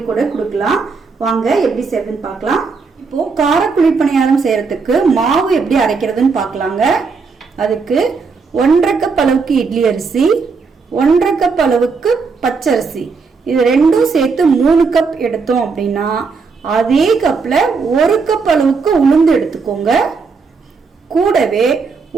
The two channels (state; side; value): quieter; left; 4.8 dB